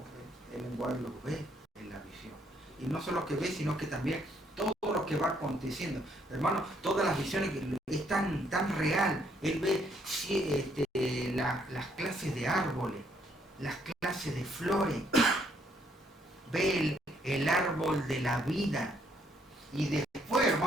el lenguaje lo ve en la visión. Y no solo que ve, sino que también todo lo que va aconteciendo. Hermano, todas las visiones es tan real. Él ve las clases de árboles, las clases de flores, ve el árbol de la vida. Y después,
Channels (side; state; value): both; normal; correlation 0.70